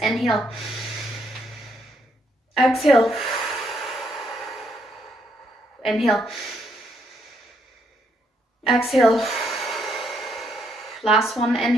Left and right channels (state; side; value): normal; both; correlation 0.73